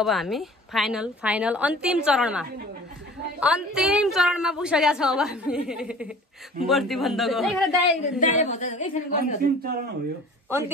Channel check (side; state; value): both; normal; correlation 0.45